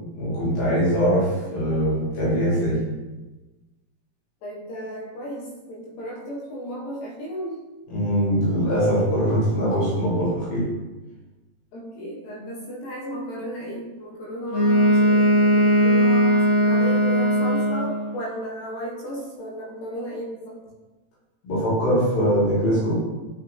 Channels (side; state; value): right; late; 18 ms